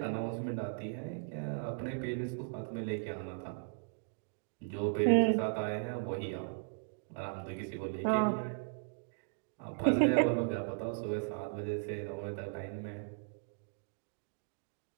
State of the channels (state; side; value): silent; left; digital silence